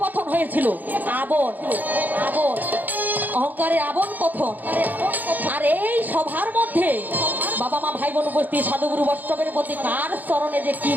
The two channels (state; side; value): late; left; 0.084 ms